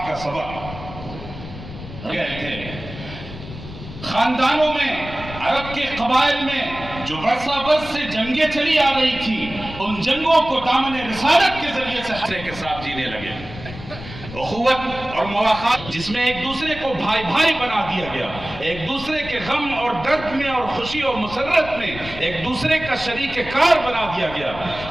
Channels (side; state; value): left; noise; rumble, 13 dB below the sound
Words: کا سبق گئے تھے۔ خاندانوں میں، عرب کے قبائل میں جو برسا برس سے جنگیں چلی آ رہی تھی، ان جنگوں کو دامن رسالت کے ذریعے سے حسرے کے ساتھ جینے لگے۔ اخوت اور مواخات جس میں ایک دوسرے کو بھائی بھائی بنا دیا گیا، ایک دوسرے کے غم اور درد میں اور خوشی اور مسرت میں ایک دوسرے کا شریک کار بنا دیا گیا۔